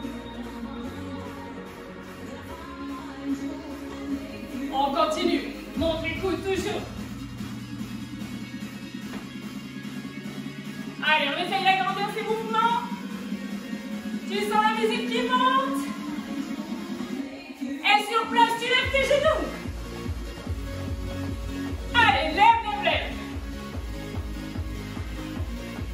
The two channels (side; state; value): both; identical; correlation 1.00